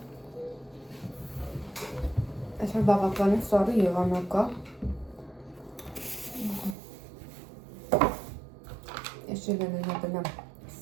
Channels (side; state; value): left; drops out; at 6.8 s